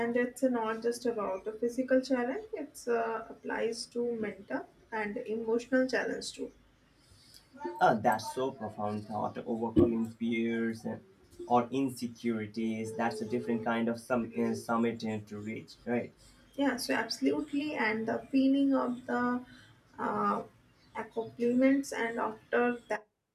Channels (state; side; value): identical; both; correlation 1.00